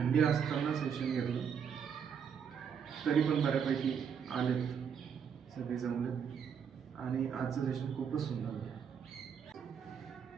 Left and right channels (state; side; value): quieter; left; 7.3 dB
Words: असताना सेशन घेतलं, तरी पण बऱ्यापैकी आलेत, सगळे जमलेत आणि आजचं सेशन खूपच सुंदर होतं.